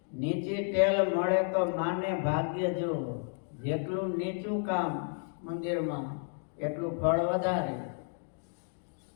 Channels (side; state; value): right; silent; 56 dB below the other